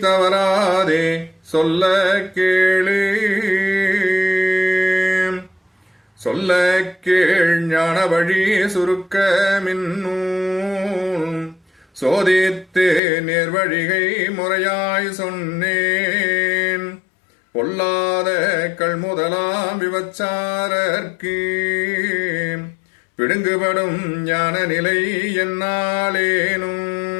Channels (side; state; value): right; drops out; at 13.0 s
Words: தவறாதே சொல்ல கேளு. சொல்ல கேள் ஞான வழி சுருக்க மின்னூல் சோதித்து நேர்வழிகை முறையாய் சொன்னேன். பொல்லாத கள்முதலாம் விபச்சாரர்க்கு பிடுங்குபடும் ஞான நிலை என்னாலேனும்.